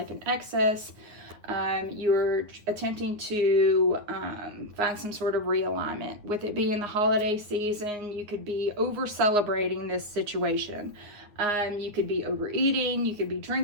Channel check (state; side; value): late; left; 9.6 ms